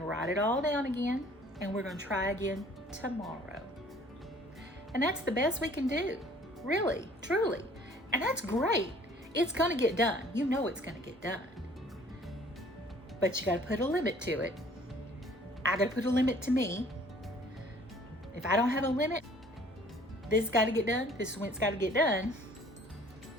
write it all down again, and we're going to try again tomorrow. And that's the best we can do, really, truly. And that's great. It's going to get done. You know it's going to get done. But you got to put a limit to it. I got to put a limit to me. If I don't have a limit, this has got to get done. This is when it's got to get done.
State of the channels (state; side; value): normal; both; correlation 0.54